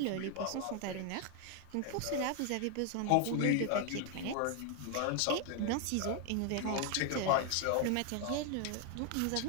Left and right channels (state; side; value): different; both; correlation 0.01